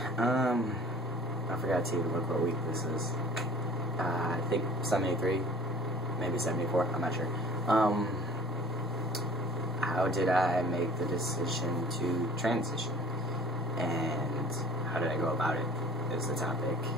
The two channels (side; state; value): both; normal; correlation 0.49